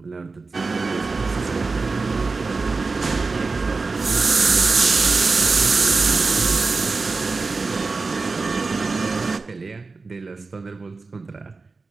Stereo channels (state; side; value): quieter; left; 4.0 dB